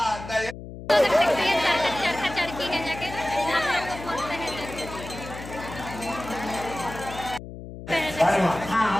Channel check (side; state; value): left; noise; hum, 12 dB below the sound